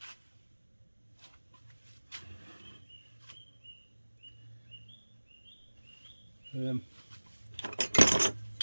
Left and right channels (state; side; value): inverted; both; correlation -1.00